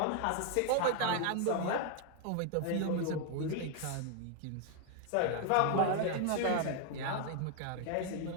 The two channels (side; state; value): both; different; correlation 0.01